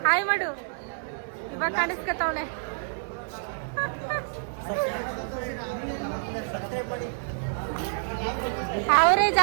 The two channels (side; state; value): left; silent; digital silence